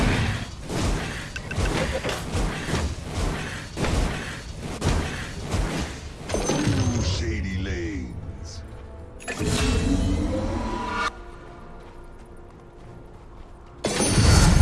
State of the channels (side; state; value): both; identical; correlation 1.00